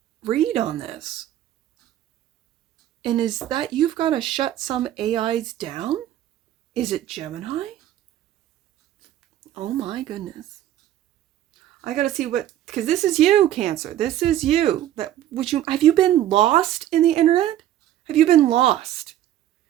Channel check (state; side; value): quieter; left; 12.5 dB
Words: read on this. And is that you've got to shut some AIs down? Is it Gemini? Oh my goodness. I got to see what, because this is you, Cancer. This is you. Have you been lost in the internet? Have you been lost?